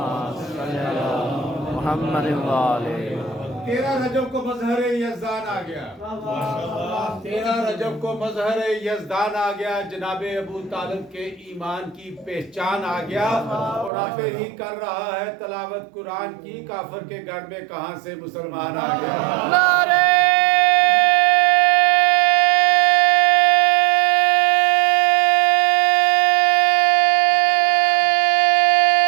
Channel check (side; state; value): left; drops out; at 13.9 s